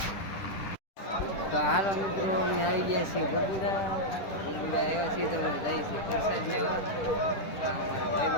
તો હાલો મિત્રો, અમે આવી ગયા છીએ બગુડા આવ્યા છીએ. તો અમે જઈએ છીએ પ્રસાદ લેવા. આ અમારા ભાઈ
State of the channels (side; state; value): right; late; 10 ms